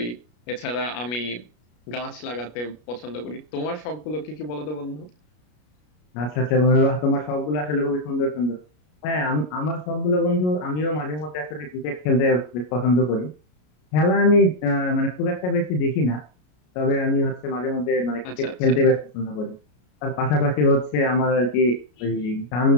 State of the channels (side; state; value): right; late; 33 ms